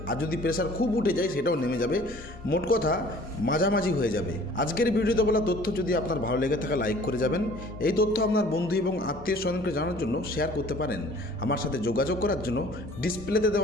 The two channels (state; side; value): normal; both; correlation 0.51